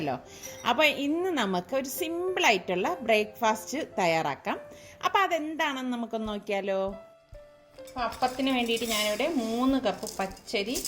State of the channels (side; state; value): both; identical; correlation 1.00